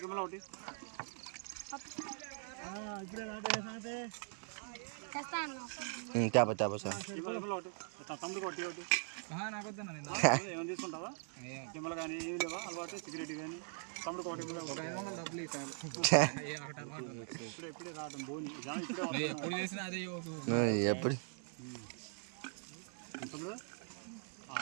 కెమెరా ఒకటి తేప తేప సార్. కెమెరా ఒకటి తమ్ముడికి ఒకటి ఒకటి ఏమైనా తీసుకుంటావా? కెమెరా కానీ ఏమి లేవా అలవాటు? సిగరెట్ కానీ తమ్ముడికి ఒకటి డబ్బులు ఇప్పుడే రావడం బోని ఎప్పుడు చేసినా అదే ఎప్పుడు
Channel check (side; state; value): left; silent; 50 dB below the other